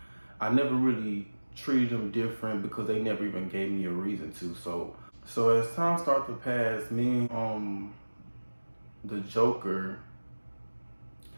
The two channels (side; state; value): both; inverted; correlation -1.00